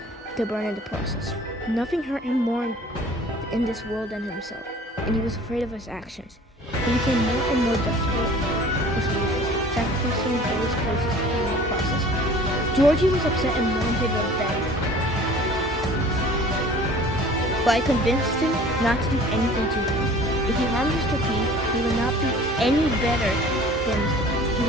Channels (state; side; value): normal; both; correlation 0.47